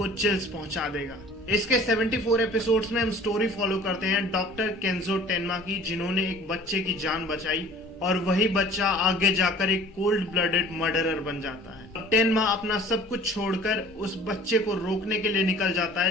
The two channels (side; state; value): both; normal; correlation 0.48